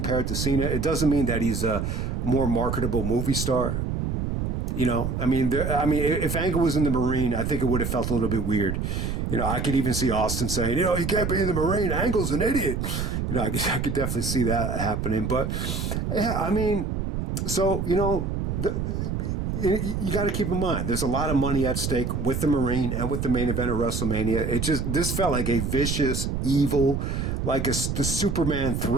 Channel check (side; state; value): right; noise; rumble, 2 dB below the sound